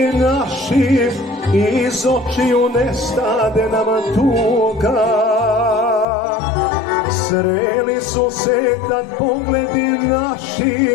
naši, iz očiju nestade nama tuga. Sreli su se tad pogledi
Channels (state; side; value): drops out; right; at 6.1 s